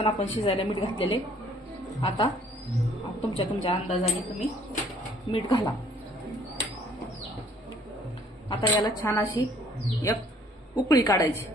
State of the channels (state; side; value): normal; both; correlation 0.60